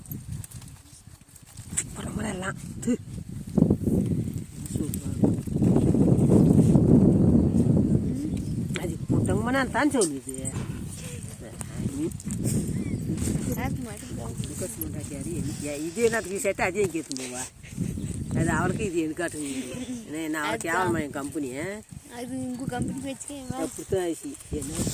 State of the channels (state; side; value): identical; both; correlation 1.00